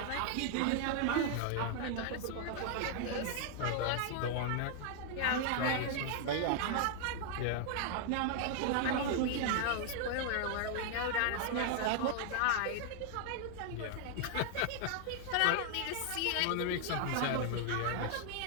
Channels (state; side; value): different; both; correlation 0.00